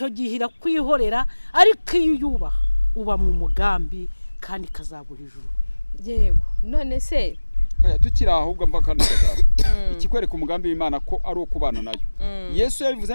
gihe irakwihorera, ariko iyo uyubaha uba mu mugambi kandi kazaguha ijuru. Yego. None se tukiri ahubwo mva kandi kazaba ikikwereka umugambi w'Imana ko ari ukubana nayo. Yesu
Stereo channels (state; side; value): inverted; both; correlation -1.00